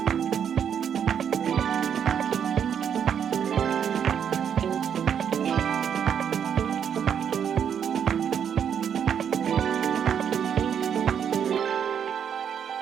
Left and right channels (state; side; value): quieter; left; 8.2 dB